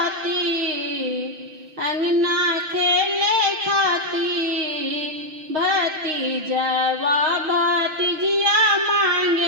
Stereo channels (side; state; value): left; late; 6.5 ms